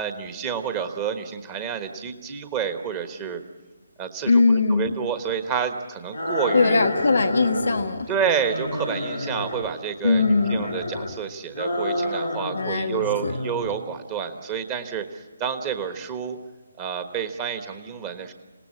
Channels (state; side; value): inverted; both; correlation -0.60